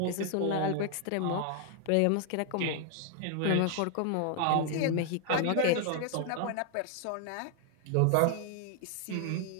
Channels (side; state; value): both; different; correlation 0.00